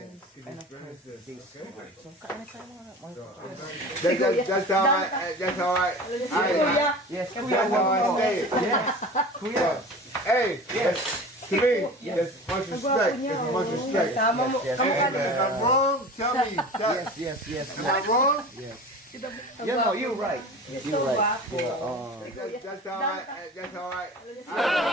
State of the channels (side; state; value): both; normal; correlation 0.36